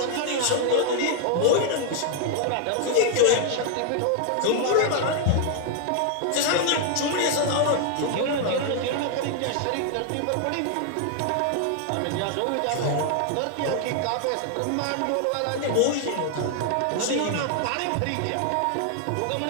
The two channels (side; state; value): both; different; correlation 0.00